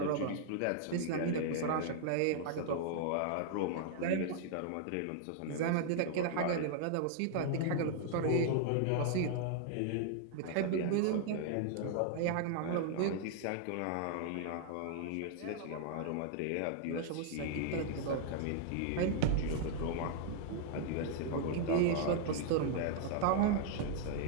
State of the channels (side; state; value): both; different; correlation -0.01